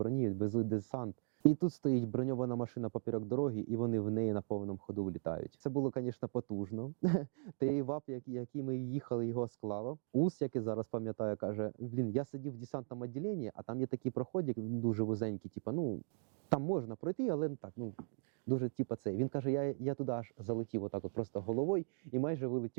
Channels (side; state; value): left; silent; digital silence